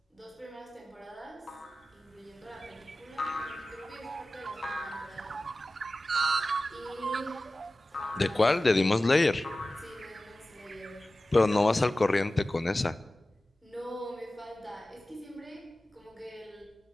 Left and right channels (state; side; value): normal; both; correlation 0.96